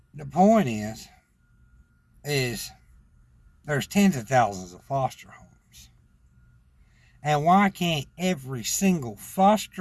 the point is there's tens of thousands of foster homes, and why can't every single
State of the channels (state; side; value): identical; both; correlation 1.00